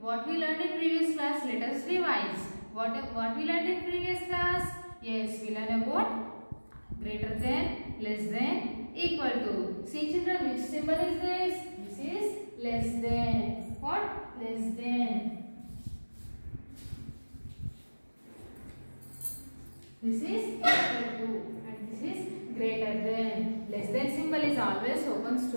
what we learned in previous class, let us revise. What we learned in previous class? Yes, we learned about greater than, less than, equal to. See children, which symbol is this? This is less than. What? Less than. This is equal to and this is greater than. Less than symbol is always opens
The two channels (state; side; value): inverted; both; correlation -1.00